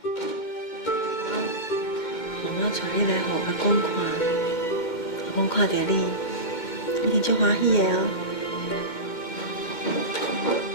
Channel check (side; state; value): right; late; 2.2 ms